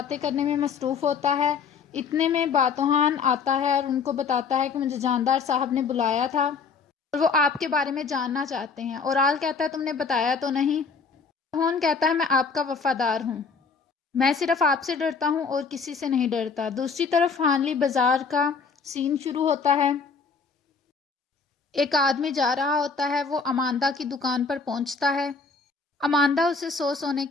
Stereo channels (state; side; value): quieter; right; 5.3 dB